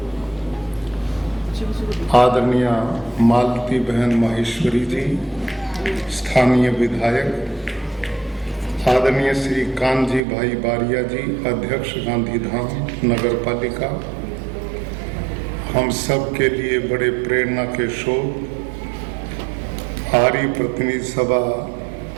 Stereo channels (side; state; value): left; drops out; at 10.2 s